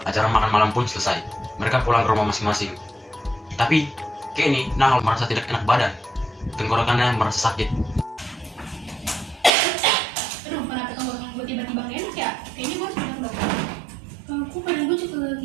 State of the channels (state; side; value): drops out; left; at 9.5 s